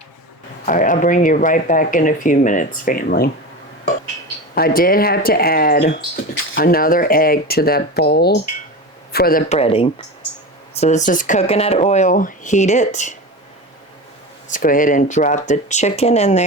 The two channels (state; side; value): normal; both; correlation 0.26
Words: All right, I'll bring you right back in a few minutes, family. I did have to add another egg to that bowl for the breading. So this is coconut oil, heat it. Let's go ahead and drop the chicken in